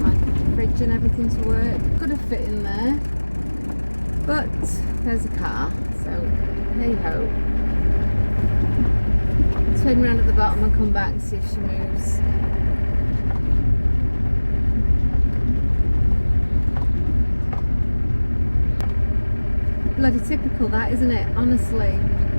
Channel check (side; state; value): both; inverted; correlation -1.00